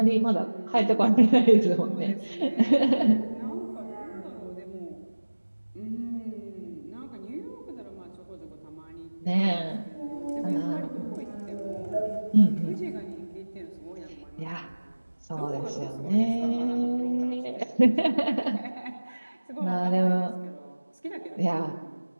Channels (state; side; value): inverted; both; correlation -1.00